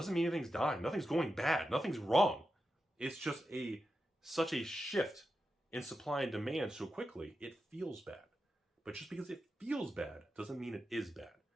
mean anything's dying. Nothing's going bad. Nothing's wrong. It's just such a shift in supply and demand so quickly, it feels bad. But just because it feels bad doesn't mean it is bad.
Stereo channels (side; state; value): both; normal; correlation 0.89